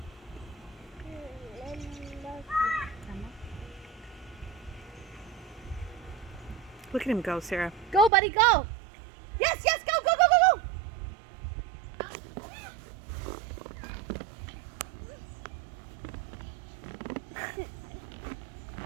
Look at him go, Sarah. Go, buddy, go! Yes, yes, go, go, go, go, go!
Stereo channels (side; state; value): left; drops out; at 8.1 s